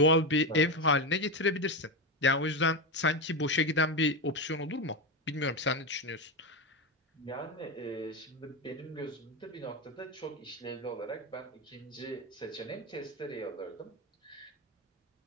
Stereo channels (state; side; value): normal; both; correlation 0.14